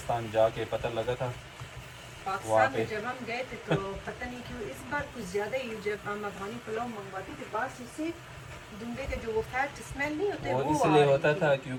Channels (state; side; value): identical; both; correlation 1.00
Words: जाके पता लगा था। पाकिस्तान में जब हम गए थे तो पता नहीं क्यों इस बार कुछ ज़्यादा ही, जब हम अफगानी पुलाव मंगवाते थे बाहर से, दुम्बे के जो वो फैट स्मेल नहीं होते वो इसलिए होता था